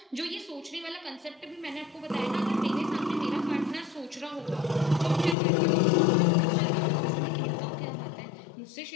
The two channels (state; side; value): drops out; right; at 5.4 s